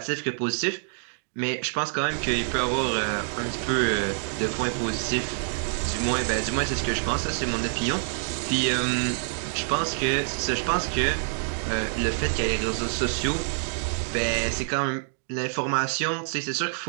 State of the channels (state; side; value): silent; left; digital silence